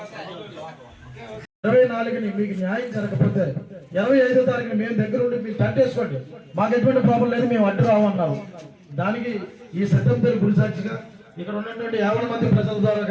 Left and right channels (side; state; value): both; identical; correlation 1.00